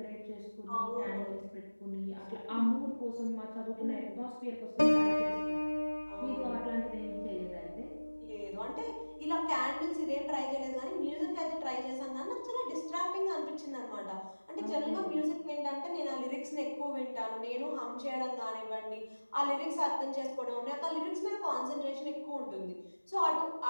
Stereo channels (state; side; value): inverted; both; correlation -1.00